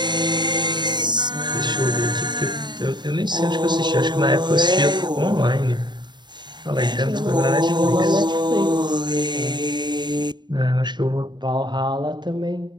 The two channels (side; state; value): left; late; 0.21 ms